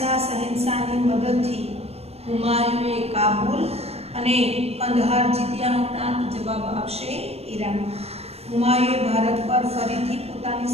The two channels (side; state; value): left; late; 0.30 ms